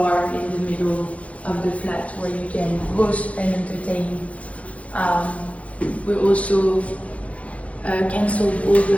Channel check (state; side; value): late; right; 0.065 ms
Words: in the middle of the flat where you can host and entertain. We also canceled all